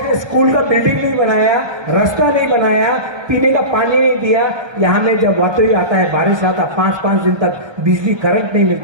स्कूल का बिल्डिंग नहीं बनाया, रास्ता नहीं बनाया, पीने का पानी नहीं दिया। यहाँ में जब वातोई आता है, बारिश आता, 5-5 दिन तक बिजली करंट नहीं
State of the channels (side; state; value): left; late; 1.3 ms